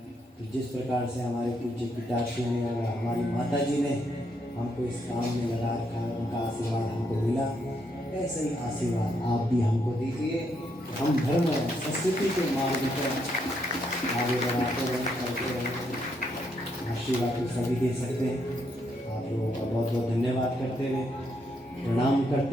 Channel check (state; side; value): normal; both; correlation 0.76